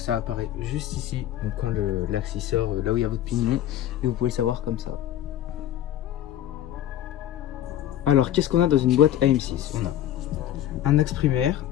apparaît juste ici, donc quand l'axe il sort, là où il y a votre pignon, et vous pouvez le savoir comme ça. Alors qu'est-ce qu'on a dans une boîte AM6? On a un axe primaire,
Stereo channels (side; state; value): right; quieter; 11.9 dB